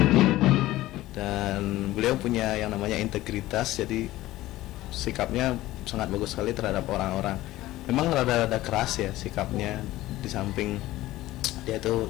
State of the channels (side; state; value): right; quieter; 16.5 dB